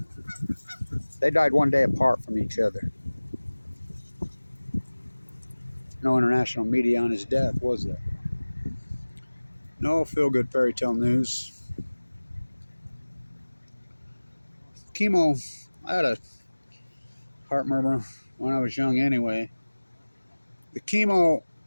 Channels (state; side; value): inverted; both; correlation -1.00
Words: They died one day apart from each other. No international media on his death, was there? No feel-good fairy tale news. Chemo, I had a heart murmur when I was young anyway. The chemo,